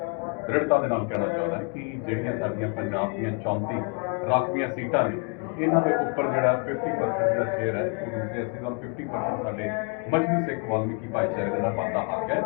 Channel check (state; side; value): quieter; right; 35.1 dB